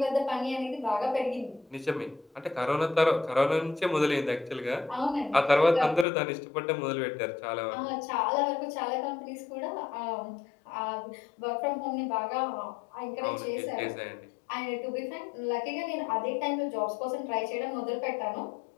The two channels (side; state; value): right; drops out; at 6.1 s